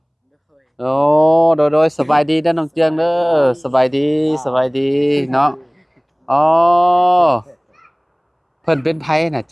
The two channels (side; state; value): both; identical; correlation 1.00